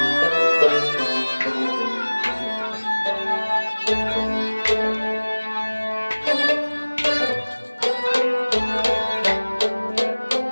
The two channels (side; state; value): both; inverted; correlation -1.00